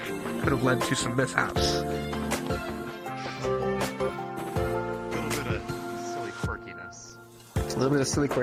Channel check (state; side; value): identical; both; correlation 1.00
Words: could have led to some mishaps. A little bit of silly